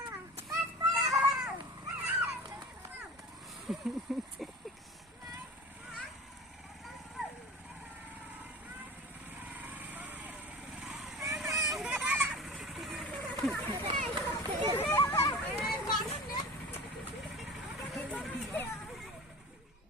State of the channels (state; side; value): normal; both; correlation 0.38